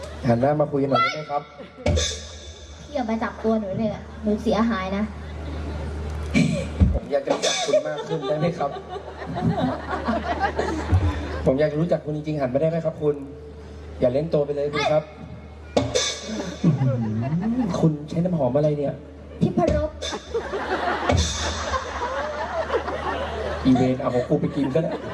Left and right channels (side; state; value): both; identical; correlation 1.00